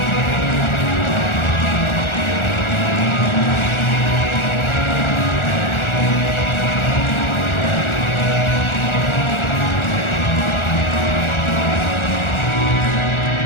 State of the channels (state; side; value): late; right; 1.4 ms